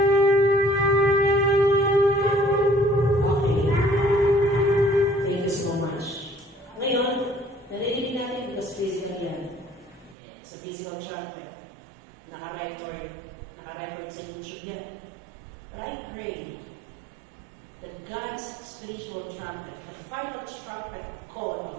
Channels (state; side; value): drops out; left; at 10.2 s